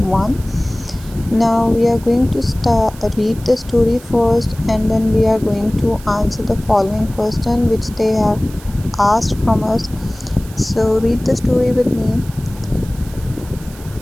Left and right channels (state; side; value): noise; right; hiss, 20 dB below the sound